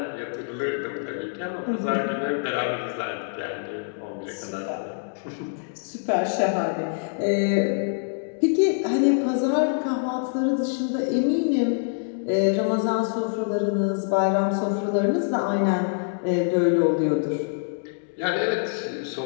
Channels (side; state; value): right; silent; digital silence